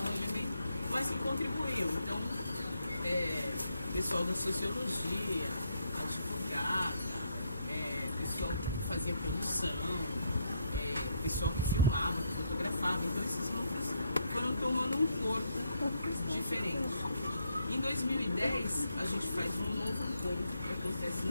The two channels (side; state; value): both; inverted; correlation -0.75